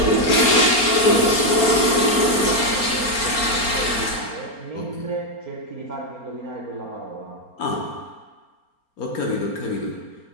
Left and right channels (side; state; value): right; late; 4.3 ms